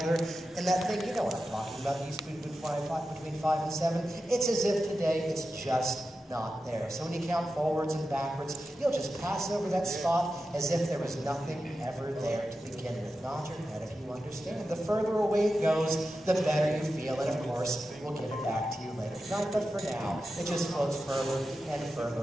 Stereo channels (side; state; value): both; normal; correlation 0.91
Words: and that thing, you know what I'm talking about, used to be between 5 and 7, it's as if today it's just not there. So when you count forwards and backwards, you'll just pass over that spot as if there was nothing ever there to begin with. Nod your head if you understand. The further away it goes, the better you feel, and of course, we'll give it back to you later tonight, but for now, it just floats further and further